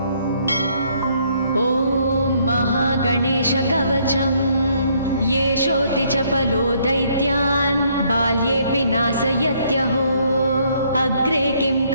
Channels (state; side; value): inverted; both; correlation -0.68